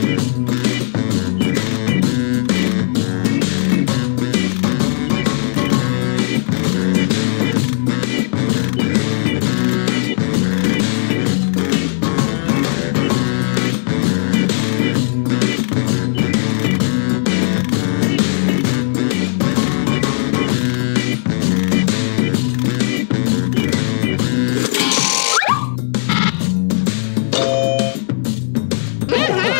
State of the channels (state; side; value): silent; right; digital silence